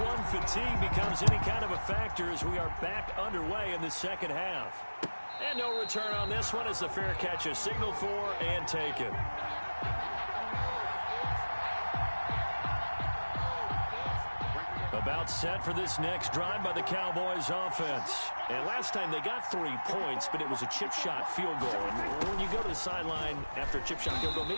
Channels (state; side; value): inverted; both; correlation -1.00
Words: fatigue becomes any kind of a factor as we are back underway in the second half. And no return on this one as the fair catch is signaled for and taken. About set for this next drive by the Cowboys offense. And last time they got 3 points, but it was a chip shot field goal. And when you go to the sideline after a chip shot field goal,